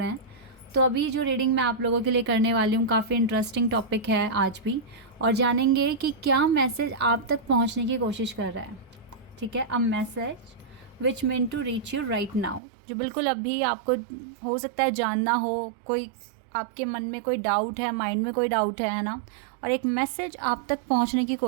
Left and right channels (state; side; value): drops out; left; at 12.6 s